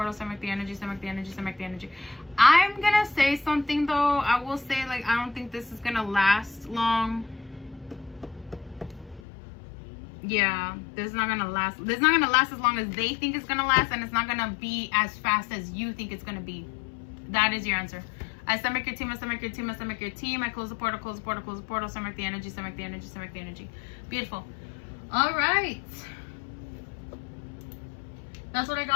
send back the energy, send back the energy, send back the energy. I'm gonna say something though. I will say, like, I don't think this is gonna last long. Yeah, this is not gonna last. This is not gonna last as long as they think it's gonna last, and it's not gonna be as fast as you think it's gonna be. That is your answer. I send back your team, I send back your team, I send back your team. I close the portal, close the portal, close the portal, send back the energy, send back the energy, send back the energy. Beautiful. All right. That's what I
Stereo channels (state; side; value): drops out; right; at 9.2 s